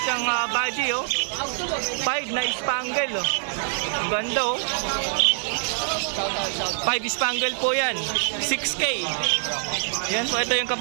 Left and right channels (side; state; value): left; silent; 62 dB below the other